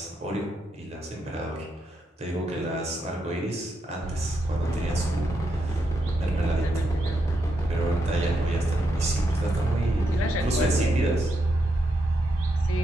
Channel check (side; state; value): both; normal; correlation 0.82